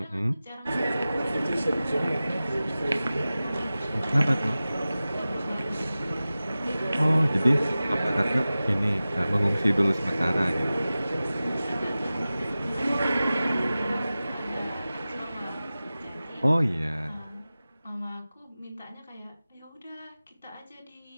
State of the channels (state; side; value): inverted; both; correlation -0.96